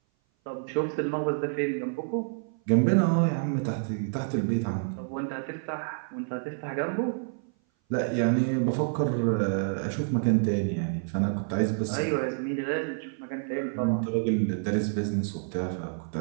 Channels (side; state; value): left; silent; 57 dB below the other